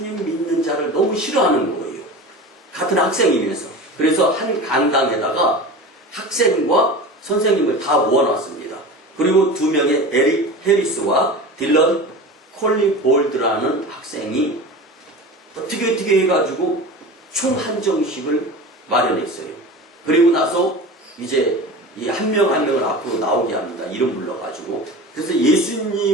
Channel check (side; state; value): both; normal; correlation 0.32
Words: 믿는 자를 너무 싫어하는 거예요. 같은 학생이면서. 그래서 한 강당에다가 학생과 선생님을 다 모아놨습니다. 그리고 두 명의 에릭 해리스와 딜런 콜리볼드라는 학생이 어떻게 해가지고 총 한정식을 마련했어요. 그리고 나서 이제 이 한 명 한 명을 앞으로 나오게 합니다. 이름 불러가지고. 그래서